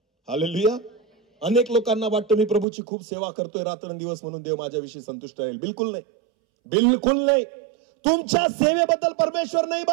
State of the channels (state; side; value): drops out; left; at 2.7 s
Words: हालेलुया. अनेक लोकांना वाटतं मी प्रभूची खूप सेवा करतोय रात्रंदिवस म्हणून देव माझ्याविषयी संतुष्ट राहील. बिलकुल नाही. बिलकुल नाही. तुमच्या सेवेबद्दल परमेश्वर नाही